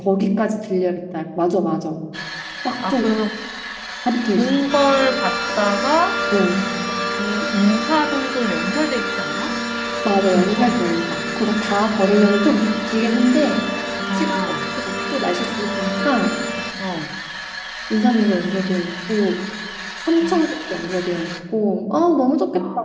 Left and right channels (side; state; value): both; identical; correlation 1.00